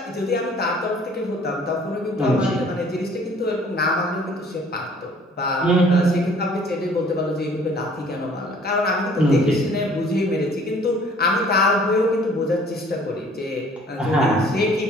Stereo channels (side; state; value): both; normal; correlation 0.55